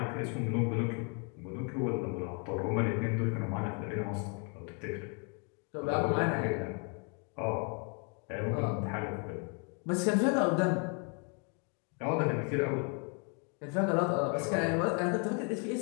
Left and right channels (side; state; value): right; quieter; 36.2 dB